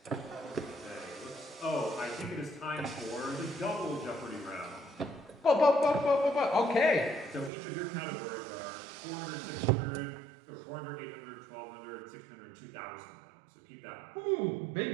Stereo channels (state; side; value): drops out; left; at 7.5 s